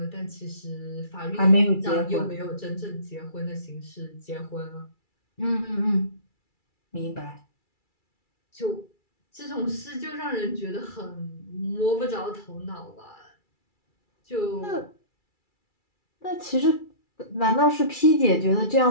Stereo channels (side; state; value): right; late; 2.3 ms